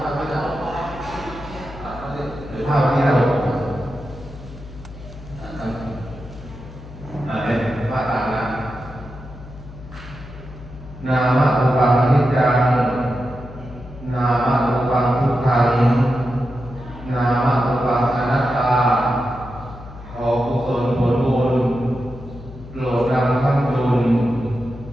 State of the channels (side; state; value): left; noise; hum, 15 dB below the sound